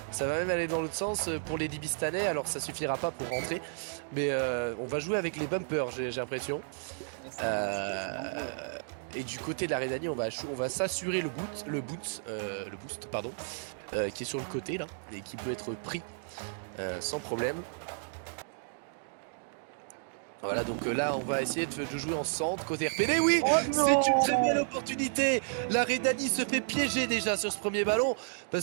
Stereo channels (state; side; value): silent; left; digital silence